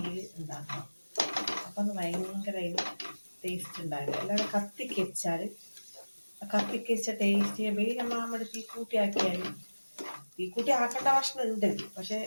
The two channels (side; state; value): both; inverted; correlation -1.00